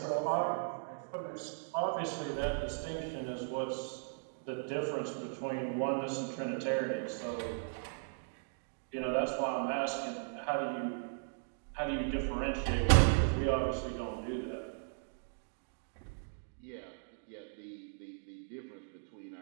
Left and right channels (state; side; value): silent; left; digital silence